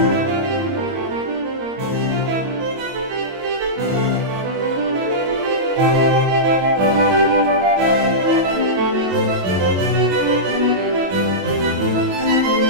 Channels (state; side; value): late; left; 22 ms